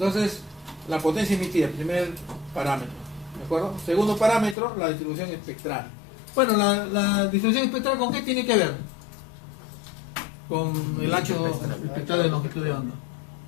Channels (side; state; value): right; drops out; at 4.5 s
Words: la potencia emitida, primer parámetro, ¿de acuerdo? Segundo parámetro, la distribución espectral. Bueno, la distribución espectral, ¿con qué tiene que ver? Con el ancho espectral de longitud de onda,